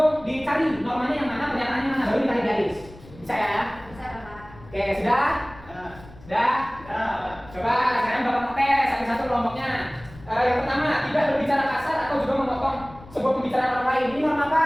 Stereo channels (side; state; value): left; noise; rumble, 20 dB below the sound